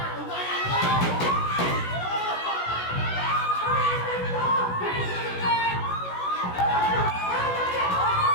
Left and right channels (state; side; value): late; right; 16 ms